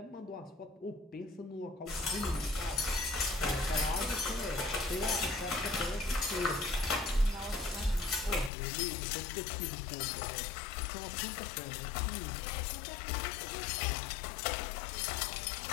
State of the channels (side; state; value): right; drops out; at 8.5 s